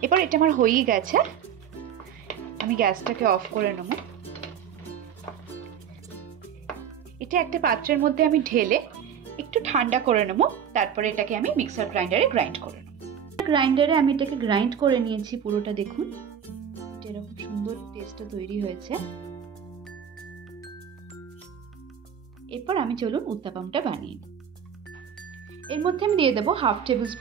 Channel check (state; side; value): quieter; left; 8.4 dB